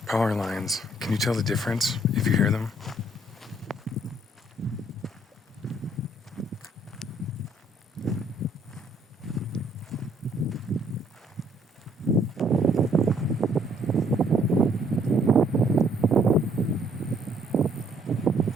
lines. Can you tell the difference if you hear them?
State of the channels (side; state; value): both; normal; correlation 0.65